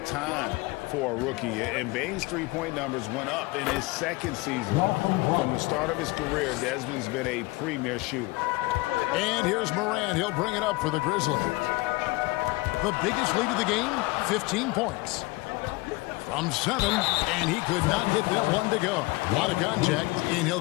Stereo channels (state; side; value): quieter; right; 22.7 dB